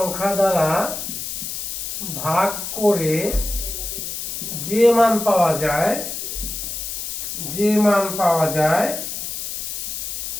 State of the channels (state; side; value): noise; left; hiss, 5 dB below the sound